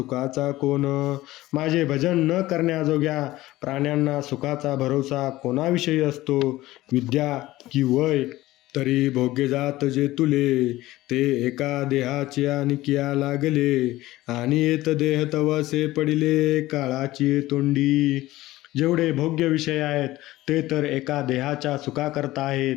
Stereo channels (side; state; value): right; quieter; 17.1 dB